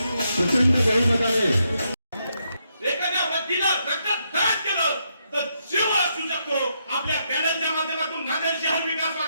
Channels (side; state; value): both; inverted; correlation -0.79